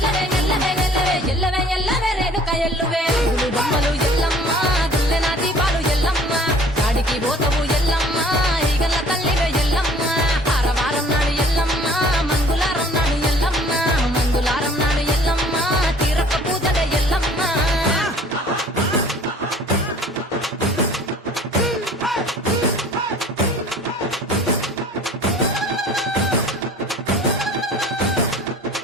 ఎల్లవే ఎల్లవే ఎల్లవే ఎల్లవే రేణుక ఎల్లువే గుగులు బొమ్మలు ఎల్లమ్మ గుల్లెన దీపాలు ఎల్లమ్మ గాడికి పోతవు ఎల్లమ్మ ఈగల్ల తల్లివే ఎల్లమ్మ వారం నాడు ఎల్లమ్మ మంగుళారం నాడు ఎల్లమ్మ మంగుళారం నాడు ఎల్లమ్మ తీరొక్క పూజలే ఎల్లమ్మ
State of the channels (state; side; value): normal; both; correlation 0.51